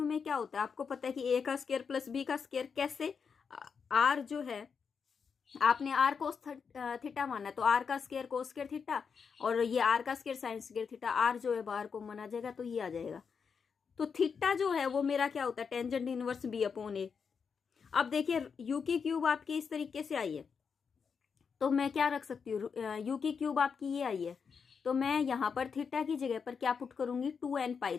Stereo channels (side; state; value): right; quieter; 6.1 dB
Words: में क्या होता है? आपको पता है कि ए का स्क्वायर प्लस बी का स्क्वायर। कैसे? आर जो है आपने आर कोस थीटा माना है, तो आर का स्क्वायर कोस स्क्वायर थीटा, और ये आर का square sine square theta. R जो है बाहर को माना जाएगा तो ये आ जाएगा। तो थीटा जो है वो मेरा क्या होता है? टेंजेंट इनवर्स बी अपॉन ए। अब देखिए यू की क्यूब आपकी इस तरीके से आई है, तो मैं क्या रख सकती हूँ? यू की क्यूब आपकी ये आई है, तो मैं यहाँ पर थीटा की जगह पर क्या पुट करूंगी? 2n पाई।